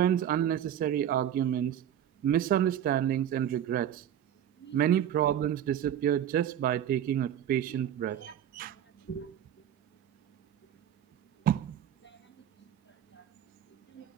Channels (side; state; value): left; quieter; 10.2 dB